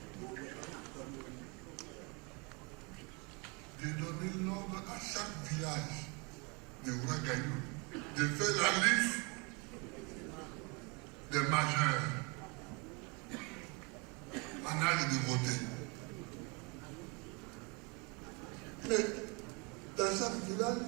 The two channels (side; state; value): left; quieter; 30.7 dB